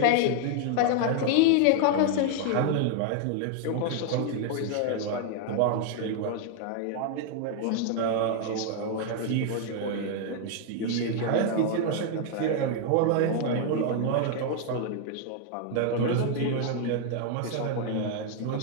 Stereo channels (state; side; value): different; both; correlation 0.00